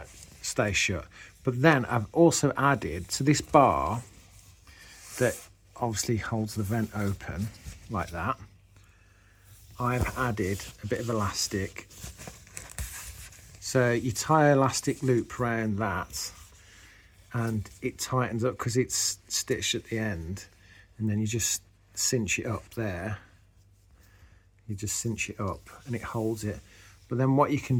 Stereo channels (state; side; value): identical; both; correlation 1.00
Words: stays shut. But then I've also added, to this bar that obviously holds the vent open like that, I've added a bit of elastic. So you tie an elastic loop around that and it tightens up because it's stitched at the end, and then you just cinch it up there. You just cinch it up and it holds it. But then what you can